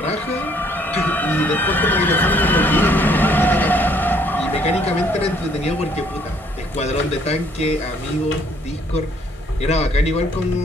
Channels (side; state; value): both; normal; correlation 0.64